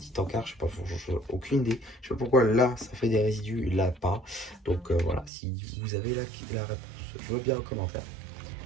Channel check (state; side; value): drops out; left; at 5.3 s